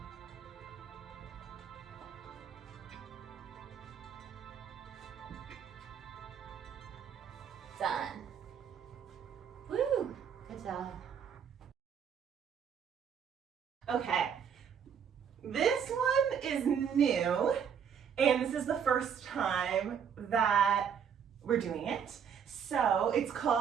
Done. Woo! Good job. Okay, this one is new, and this is the first time that we're doing it. So it's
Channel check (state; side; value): quieter; left; 7.7 dB